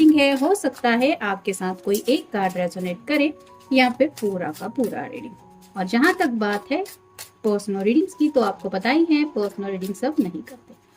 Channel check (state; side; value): identical; both; correlation 1.00